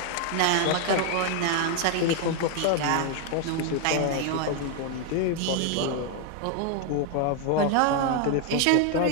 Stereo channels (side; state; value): both; different; correlation 0.01